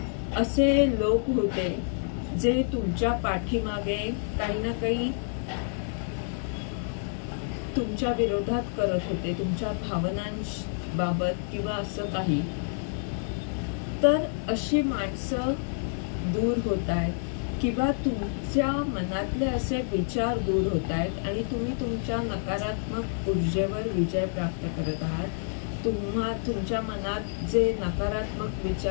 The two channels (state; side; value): silent; right; digital silence